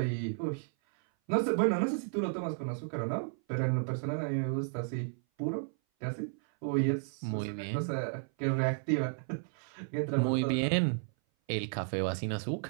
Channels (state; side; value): silent; left; 56 dB below the other